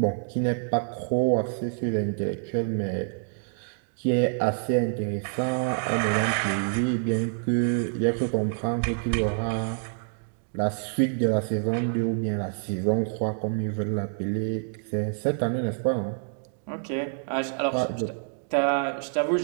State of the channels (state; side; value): silent; left; digital silence